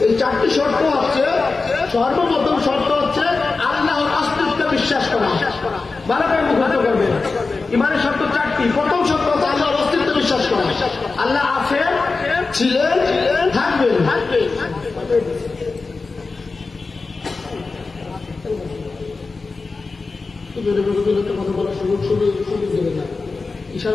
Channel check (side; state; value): right; quieter; 4.0 dB